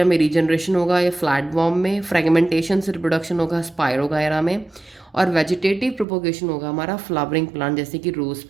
में रीजनरेशन होगा या फ्लैटवॉर्म में। फ्रेगमेंटेशन से रिप्रोडक्शन होगा स्पायरोगायरा में। और वेजिटेटिव प्रोपोगेशन होगा हमारा फ्लावरिंग प्लांट जैसे कि रोज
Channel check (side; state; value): left; drops out; at 6.1 s